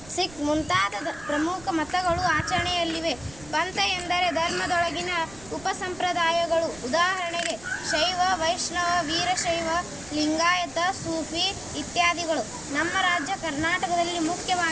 ಸಿಖ್ ಮುಂತಾದ ಪ್ರಮುಖ ಮತಗಳು ಆಚರಣೆಯಲ್ಲಿವೆ. ಪಂಥ ಎಂದರೆ ಧರ್ಮದೊಳಗಿನ ಉಪಸಂಪ್ರದಾಯಗಳು. ಉದಾಹರಣೆಗೆ ಶೈವ, ವೈಷ್ಣವ, ವೀರಶೈವ, ಲಿಂಗಾಯತ, ಸೂಫಿ ಇತ್ಯಾದಿಗಳು. ನಮ್ಮ ರಾಜ್ಯ ಕರ್ನಾಟಕದಲ್ಲಿ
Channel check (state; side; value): noise; right; rumble, 20 dB below the sound